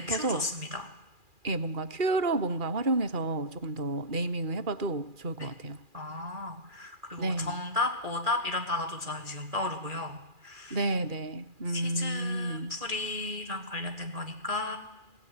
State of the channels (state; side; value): late; left; 2.4 ms